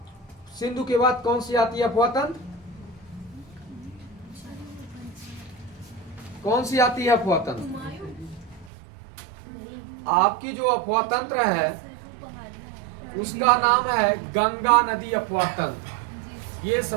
सिंधु के बाद कौन सी आती है अपवाह तंत्र? कौन सी आती है अपवाह तंत्र? आपकी जो अफवाह तंत्र है उसका नाम है गंगा नदी अफवाह तंत्र। ये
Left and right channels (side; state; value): left; drops out; at 8.7 s